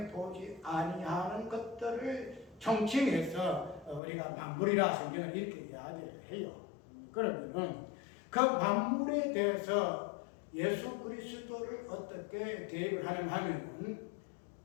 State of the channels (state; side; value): drops out; right; at 4.0 s